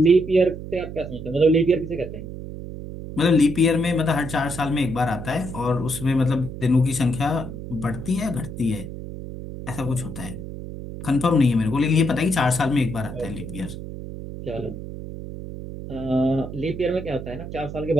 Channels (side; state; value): right; noise; hum, 9 dB below the sound